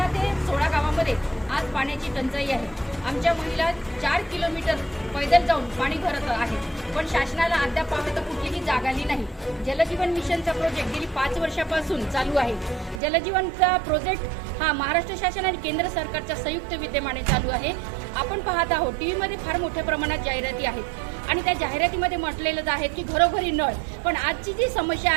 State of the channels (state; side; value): drops out; left; at 13.0 s